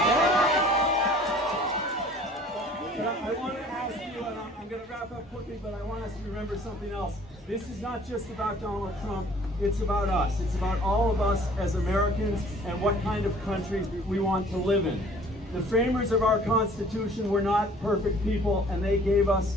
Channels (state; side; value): normal; both; correlation 0.52